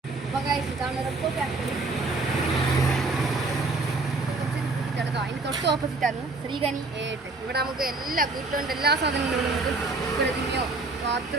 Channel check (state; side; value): quieter; left; 3.5 dB